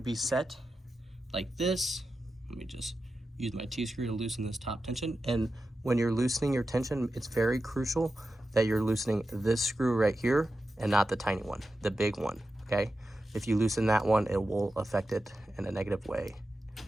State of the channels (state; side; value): normal; both; correlation 0.91